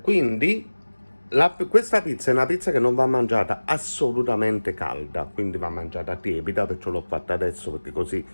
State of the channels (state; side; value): inverted; both; correlation -1.00